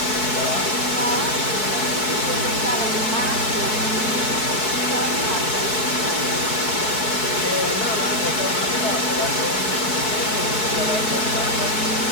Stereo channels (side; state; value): right; late; 4.6 ms